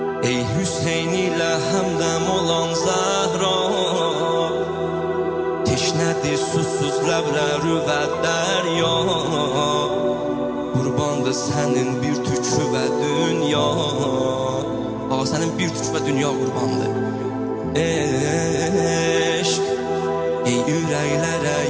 ey Hüseyn ilə həmdəm olan Zəhra, teşnədir susuz ləbləri və dərya. Qurbandır sənin bir tükü və dünya. Ağa sənin bir tükü və dünya qurbandır. Eşq ey ürəklərə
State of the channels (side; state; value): both; identical; correlation 1.00